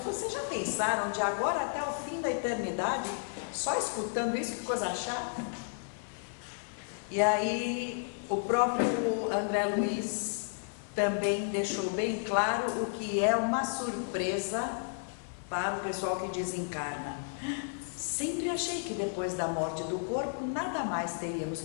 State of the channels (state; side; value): silent; right; 56 dB below the other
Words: falou: vocês já pensaram de agora até o fim da eternidade só escutando isso? Que coisa chata. E aí o próprio André Luiz também deixou bem claro o que é uma surpresa para o pessoal que desencarna. Sempre achei que depois da morte do corpo nada mais teríamos